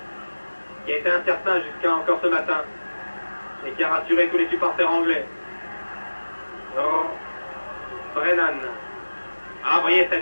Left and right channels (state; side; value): inverted; both; correlation -1.00